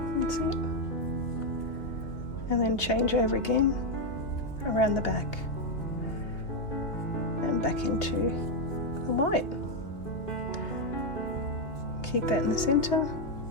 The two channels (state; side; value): late; right; 2.5 ms